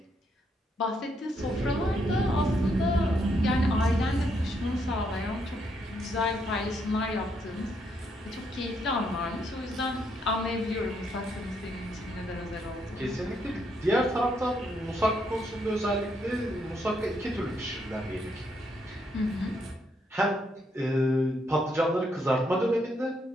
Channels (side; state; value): both; normal; correlation 0.75